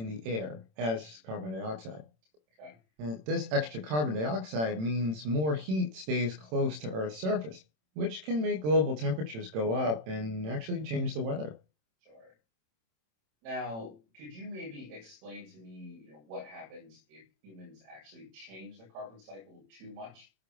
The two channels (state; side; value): late; left; 27 ms